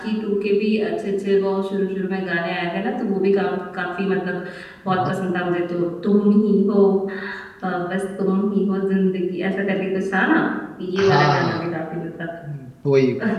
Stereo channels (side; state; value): both; identical; correlation 1.00